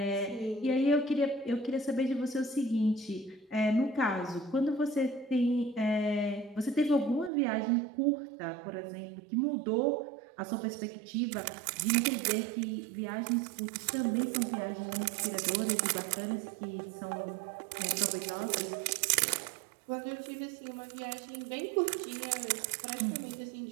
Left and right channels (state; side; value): drops out; left; at 7.3 s